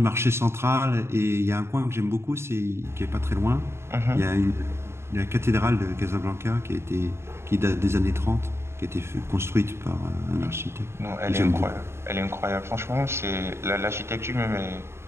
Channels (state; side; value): late; left; 0.12 ms